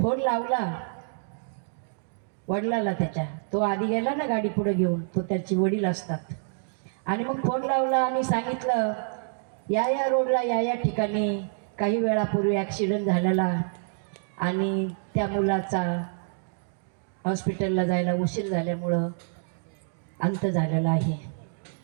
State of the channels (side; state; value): left; silent; digital silence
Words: लावला वडिलाला त्याच्या, तो आधी गेला ना गाडी पुढे घेऊन, तो त्याची वडील असतात. आणि मग फोन लावला आणि सांगितलं, या रोडला या ठिकाणी काही वेळापूर्वी ॲक्सिडेंट झालेला आणि त्या मुलाचा हॉस्पिटलला जायला उशीर झाल्यामुळं अंत झालेला आहे.